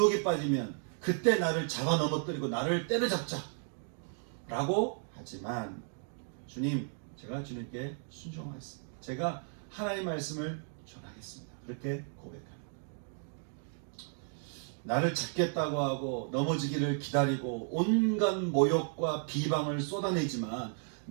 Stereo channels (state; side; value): silent; left; 55 dB below the other